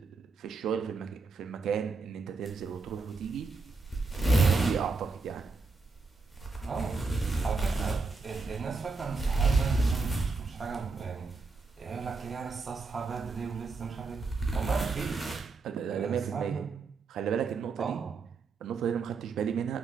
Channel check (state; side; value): quieter; left; 4.1 dB